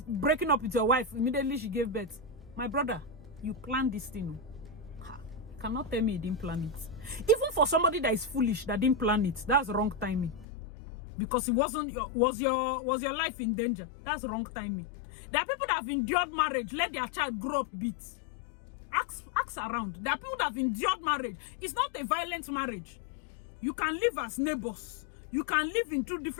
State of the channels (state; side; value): drops out; right; at 10.5 s